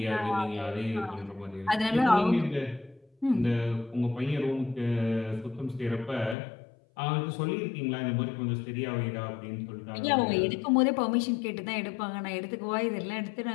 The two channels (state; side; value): drops out; right; at 6.4 s